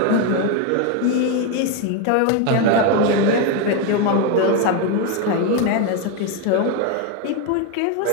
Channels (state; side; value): different; both; correlation 0.02